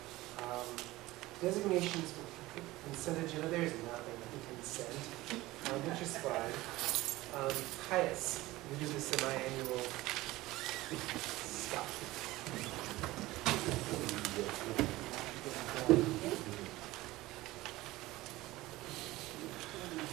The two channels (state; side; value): quieter; left; 18.4 dB